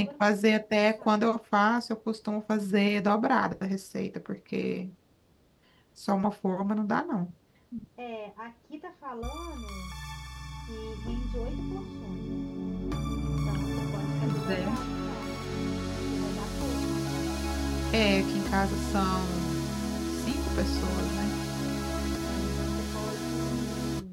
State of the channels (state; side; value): identical; both; correlation 1.00